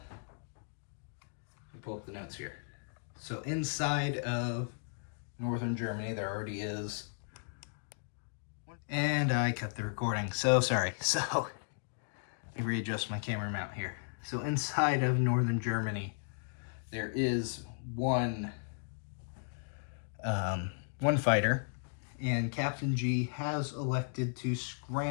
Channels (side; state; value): right; silent; digital silence